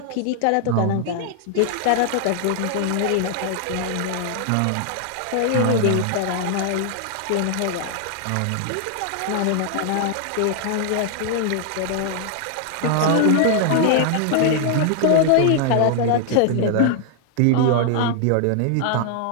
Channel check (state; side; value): different; both; correlation 0.00